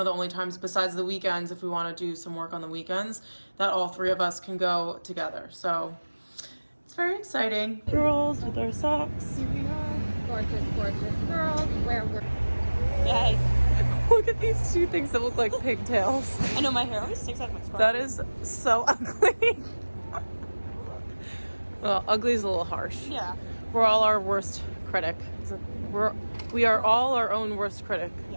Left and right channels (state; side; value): inverted; both; correlation -1.00